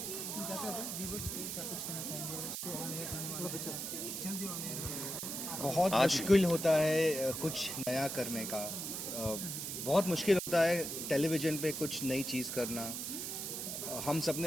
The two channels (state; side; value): noise; right; hiss, 4 dB below the sound